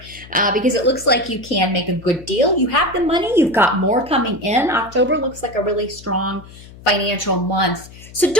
because it looks like you can make a good deal. You have the money. You've got more coming in. October looks like a really strong financial month. So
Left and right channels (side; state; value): left; noise; hum, 19 dB below the sound